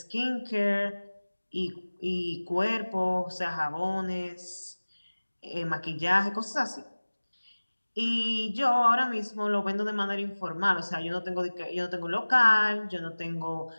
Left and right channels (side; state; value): both; inverted; correlation -1.00